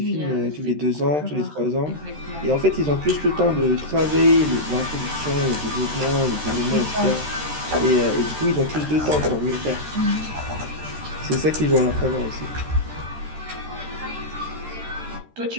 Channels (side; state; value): left; late; 13 ms